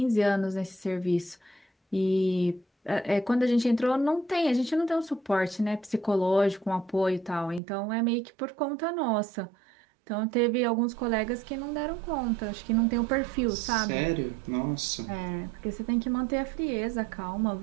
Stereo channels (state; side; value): drops out; left; at 7.6 s